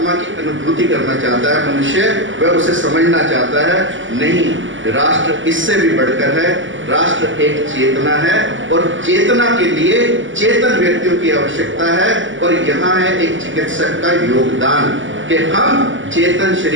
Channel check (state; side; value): late; left; 0.56 ms